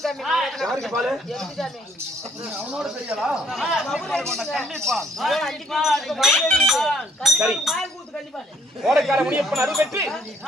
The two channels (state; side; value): normal; both; correlation 0.66